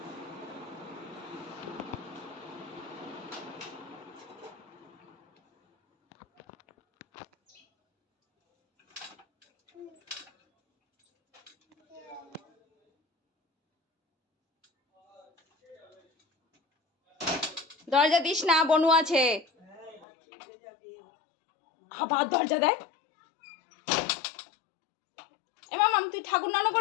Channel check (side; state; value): right; drops out; at 20.1 s